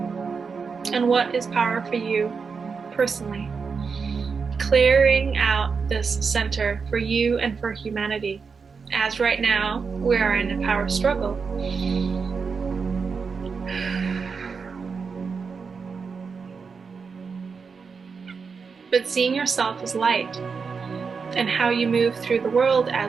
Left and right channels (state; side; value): quieter; left; 5.4 dB